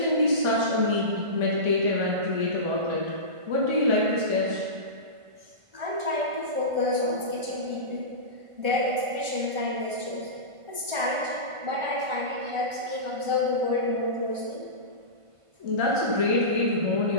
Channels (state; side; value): late; left; 1.4 ms